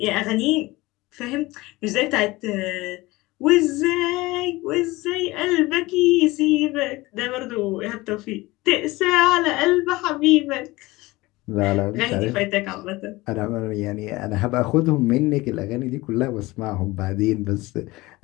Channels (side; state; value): right; quieter; 20.6 dB